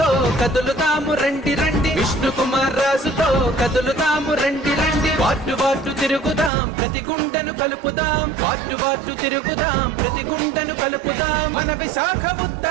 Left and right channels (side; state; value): left; drops out; at 6.5 s